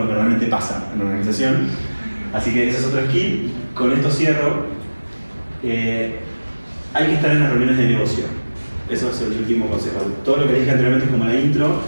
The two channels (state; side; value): inverted; both; correlation -1.00